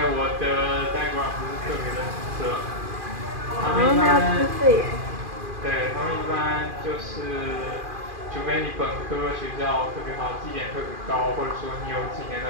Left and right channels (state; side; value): late; left; 2.4 ms